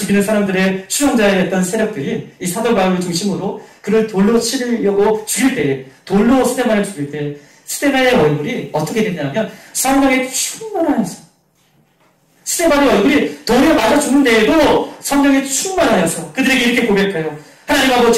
사람들의 추종자였던 세력들이 이 사도 바울을 중심으로 그를 돌로 치려고 죽일 때, 돌로 스데반을 죽일 때 스데반의 얼굴이 어떻게 됐냐면 성령의 충만하여서, 스데반의 얼굴이 돌에 맞아 죽는데에도 성령의 충만하여서 그들에게 이렇게 고백해요. 하나님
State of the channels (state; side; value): identical; both; correlation 1.00